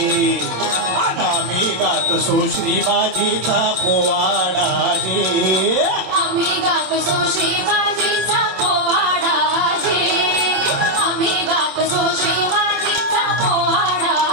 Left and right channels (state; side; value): late; left; 27 ms